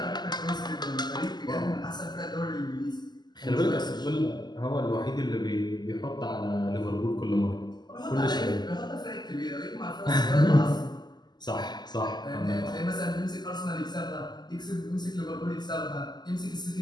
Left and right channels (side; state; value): right; late; 0.21 ms